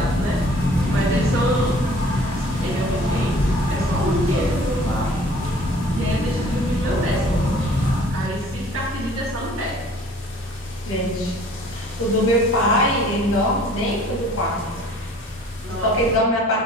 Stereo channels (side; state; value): both; normal; correlation 0.52